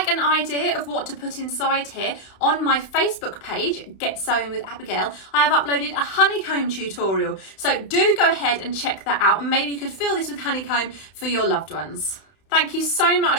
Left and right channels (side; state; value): right; late; 31 ms